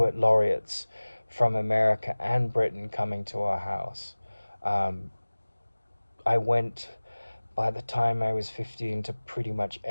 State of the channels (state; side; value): inverted; both; correlation -1.00